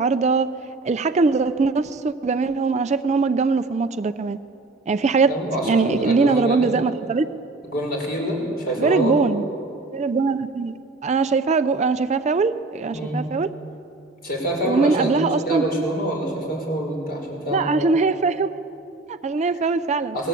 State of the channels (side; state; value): left; quieter; 3.3 dB